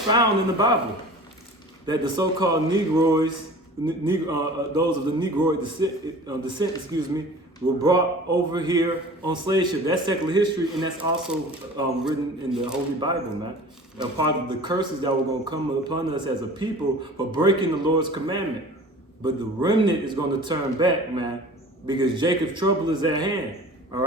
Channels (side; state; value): both; normal; correlation 0.42